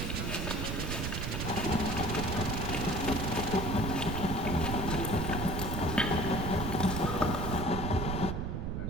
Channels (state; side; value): noise; right; rumble, 2 dB below the sound